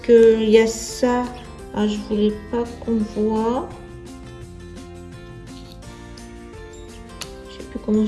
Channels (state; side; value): identical; both; correlation 1.00